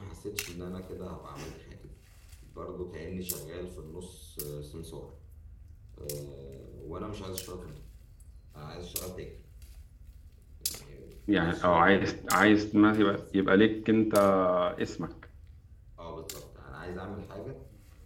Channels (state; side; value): identical; both; correlation 1.00